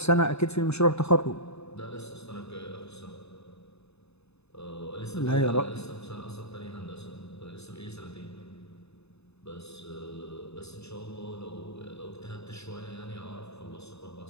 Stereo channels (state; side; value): late; right; 0.80 ms